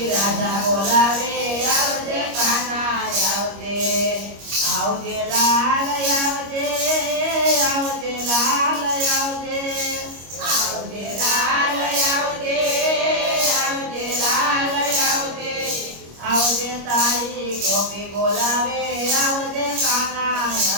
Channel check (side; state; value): left; late; 25 ms